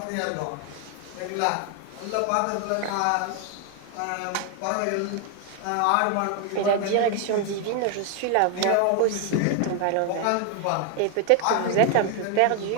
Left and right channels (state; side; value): different; both; correlation 0.01